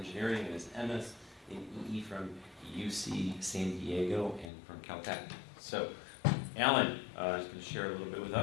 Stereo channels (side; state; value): right; drops out; at 4.5 s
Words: and his MS in EE from UC San Diego and from Caltech. So, Alan is going to share a little bit with